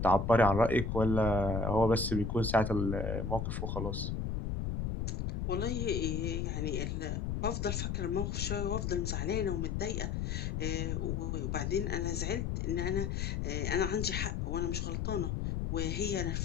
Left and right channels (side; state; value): left; noise; rumble, 1 dB below the sound